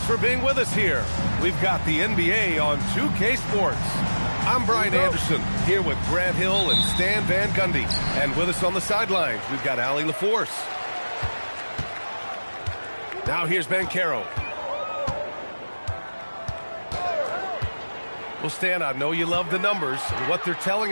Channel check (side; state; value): both; inverted; correlation -1.00